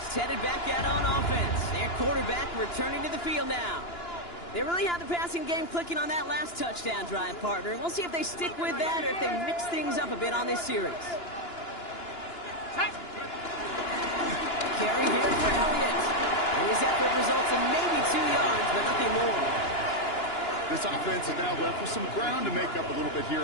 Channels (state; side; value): late; right; 2.9 ms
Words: headed back out on offense. Their quarterback returning to the field now. They really had the passing game clicking on that last touchdown drive, partner. We'll see if they stick with that or if they mix things up a bit on this series. Carry here for Elliott. And his effort results in maybe 2 yards, but nothing more. This offense is now left with some ground to make up a little bit